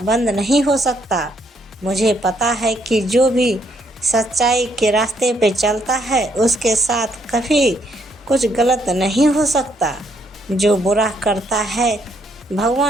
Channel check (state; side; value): normal; both; correlation 0.72